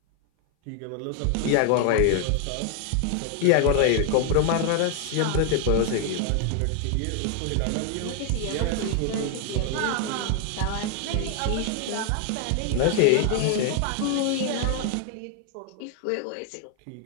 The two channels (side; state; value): both; different; correlation 0.00